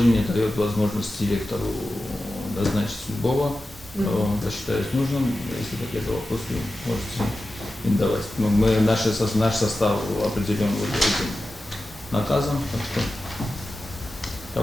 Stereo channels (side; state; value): both; normal; correlation 0.93